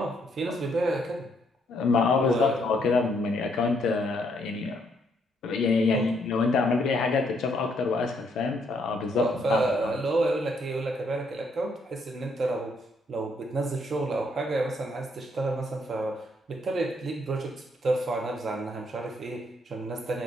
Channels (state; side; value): normal; both; correlation 0.71